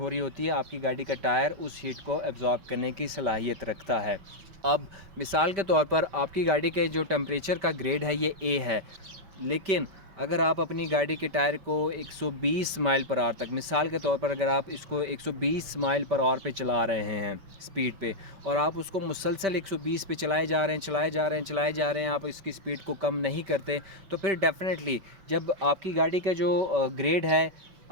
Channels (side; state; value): left; late; 5.2 ms